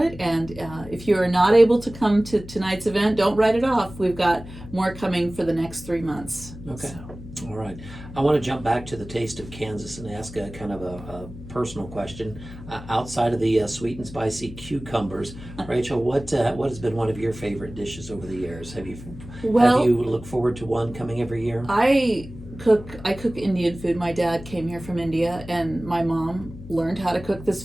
and if you're not able to come to tonight's event, don't write it off. We've got more coming for the next 3 months. Okay. So. All right. I want to jump back to the taste of Kansas and ask a kind of a personal question. Outside of the sweet and spicy cucumbers, Rachel, what has been one of your favorite dishes over the years? Have you looked forward to one coming every year? I cook Indian food. My dad came here from India, and my mom learned how to cook this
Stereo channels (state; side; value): noise; left; hum, 14 dB below the sound